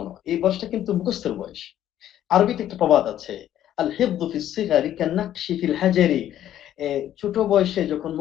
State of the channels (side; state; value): right; quieter; 11.6 dB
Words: এই বয়সটা কিন্তু মুখস্থের বয়স। আরবিতে একটা প্রবাদ আছে, আল হিফযু ফিস সিগারি কান্নাকশি ফিল হাজারি। ছোট বয়সে যখন